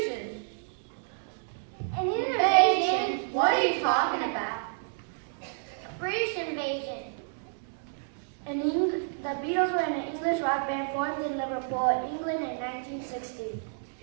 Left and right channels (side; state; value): left; silent; digital silence